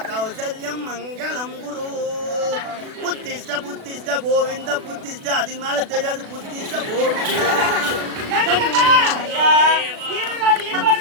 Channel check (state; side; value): late; left; 36 ms